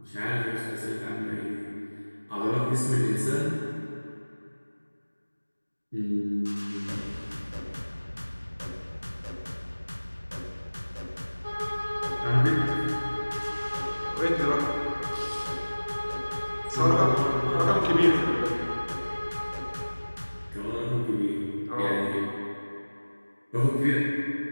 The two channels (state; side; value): inverted; both; correlation -1.00